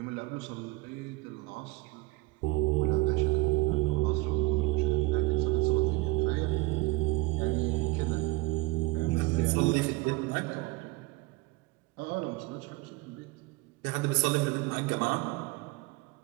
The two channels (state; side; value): quieter; left; 22.6 dB